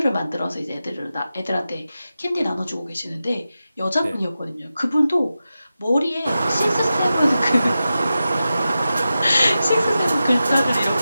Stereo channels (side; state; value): both; inverted; correlation -0.92